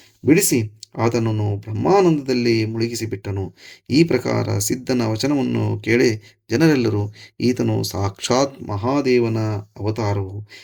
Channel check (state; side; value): identical; both; correlation 1.00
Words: ಬಿಡಿಸಿ ಆತನನ್ನು ಬ್ರಹ್ಮಾನಂದದಲ್ಲಿ ಮುಳುಗಿಸಿಬಿಟ್ಟನು. ಈ ಪ್ರಕಾರ ಸಿದ್ಧನ ವಚನವನ್ನು ಕೇಳಿ ಜನರೆಲ್ಲರೂ, ಈತನು ಸಾಕ್ಷಾತ್ ಮಹಾದೇವನ ಅವತಾರವು,